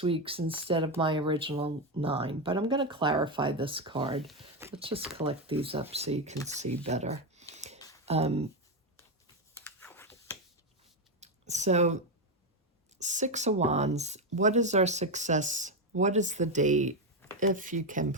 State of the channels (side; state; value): both; normal; correlation 0.08